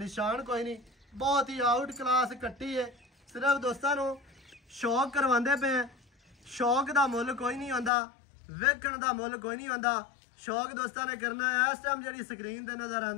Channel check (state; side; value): drops out; right; at 7.9 s